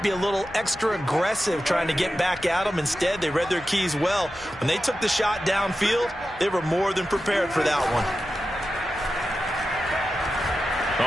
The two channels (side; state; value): both; normal; correlation 0.92